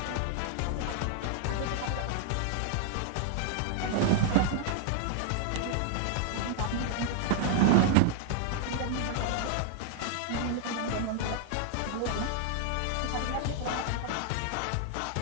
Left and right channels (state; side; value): different; both; correlation 0.00